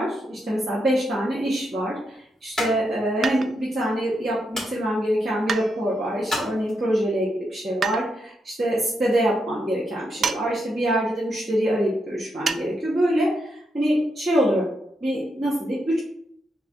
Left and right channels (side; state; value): both; normal; correlation 0.82